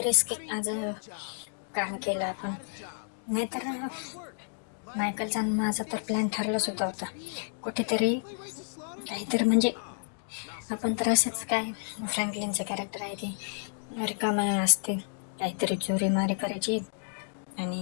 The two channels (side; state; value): right; silent; digital silence